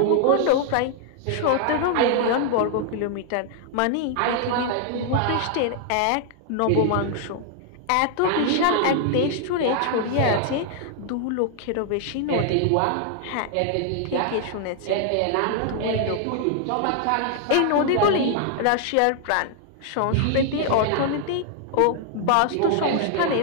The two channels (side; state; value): both; different; correlation 0.00